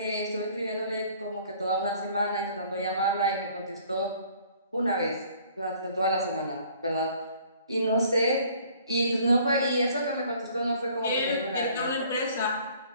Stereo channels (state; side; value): inverted; both; correlation -0.56